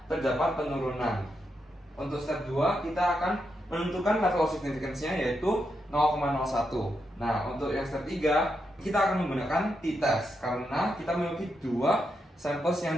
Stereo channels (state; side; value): normal; both; correlation 0.83